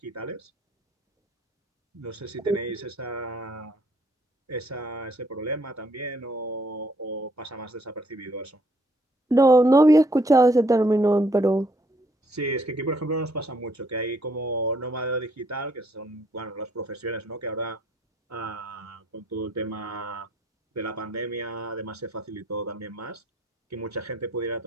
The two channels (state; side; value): normal; both; correlation 0.68